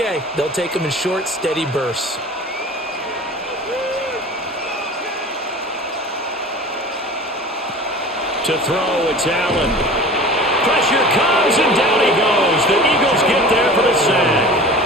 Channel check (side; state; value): both; normal; correlation 0.39